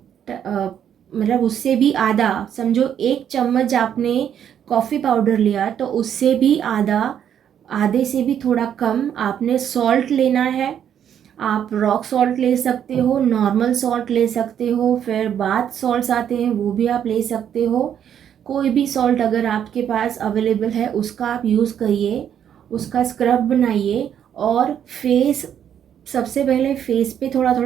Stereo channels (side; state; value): left; quieter; 9.2 dB